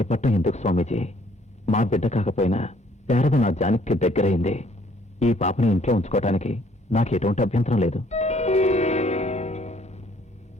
ఎందుకు స్వామీజీ? మా బిడ్డ కాకపోయినా శారద నా జానకి దగ్గరైంది. ఈ పాపని ఇంట్లో ఉంచుకోవటానికి నాకు ఎటువంటి అభ్యంతరం లేదు.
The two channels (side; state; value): both; normal; correlation 0.62